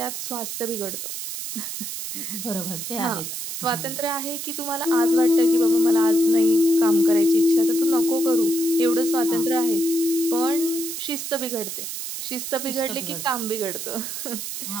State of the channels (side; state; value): right; noise; hiss, 6 dB below the sound